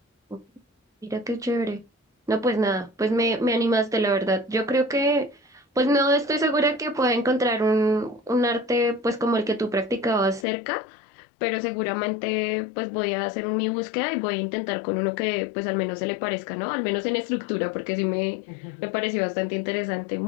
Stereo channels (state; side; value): drops out; right; at 10.5 s